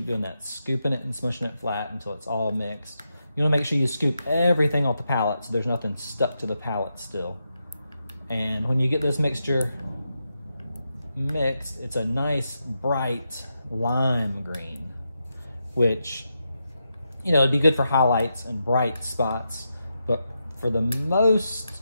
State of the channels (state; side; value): inverted; both; correlation -0.86